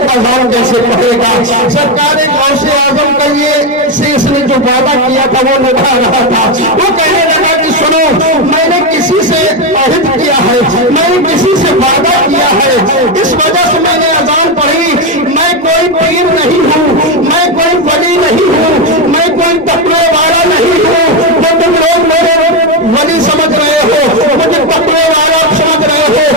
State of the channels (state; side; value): normal; both; correlation 0.09